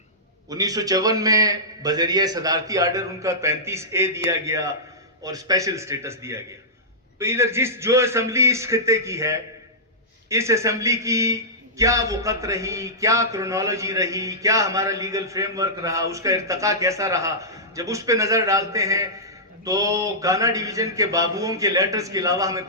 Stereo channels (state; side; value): normal; both; correlation -0.14